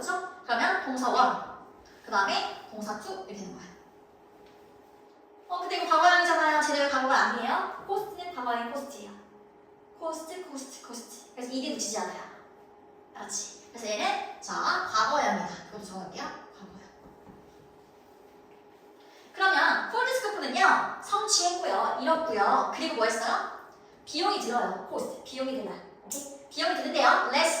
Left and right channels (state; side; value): identical; both; correlation 1.00